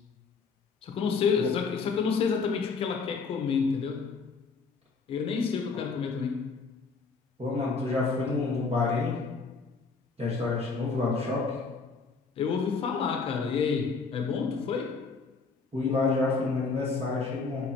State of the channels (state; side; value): quieter; right; 4.6 dB